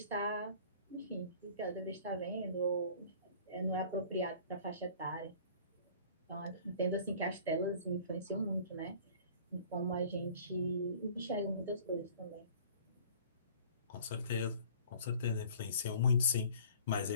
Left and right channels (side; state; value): both; inverted; correlation -0.49